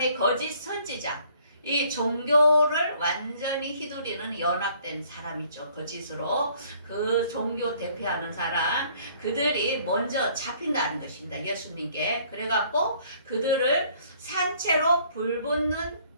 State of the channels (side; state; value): both; inverted; correlation -0.60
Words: 거짓 선지자, 이 종교를 완전히 휘두르는 연합된 사람이죠. 거짓으로 그 종교 대표하는 사람, 그들이 먼저 잡힌다는 것입니다. 예수님께. 그래갖고 그들을 산채로 불붙는